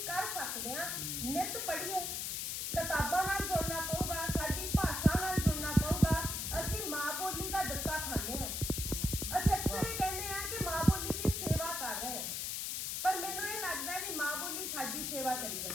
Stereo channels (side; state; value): left; noise; hiss, 2 dB below the sound